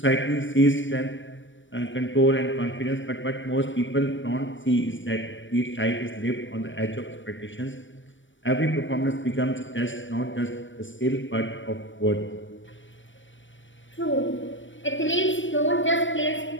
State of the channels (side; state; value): right; late; 0.56 ms